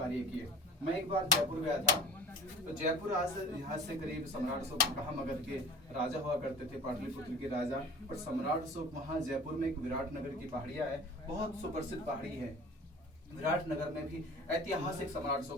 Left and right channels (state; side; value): normal; both; correlation 0.41